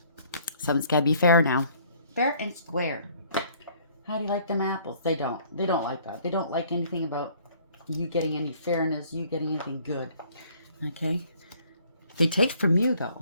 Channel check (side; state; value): both; inverted; correlation -0.58